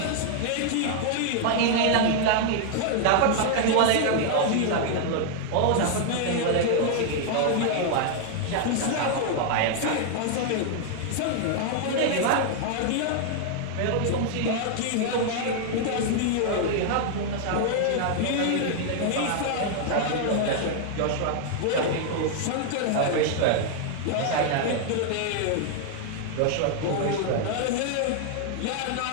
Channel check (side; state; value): both; different; correlation 0.00